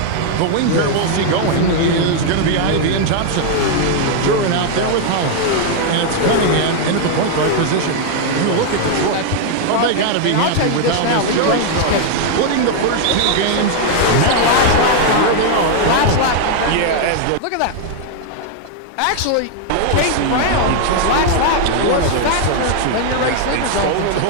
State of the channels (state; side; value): different; both; correlation 0.00